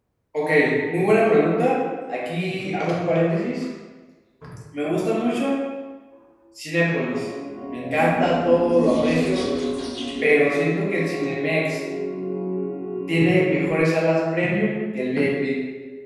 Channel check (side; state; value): both; identical; correlation 1.00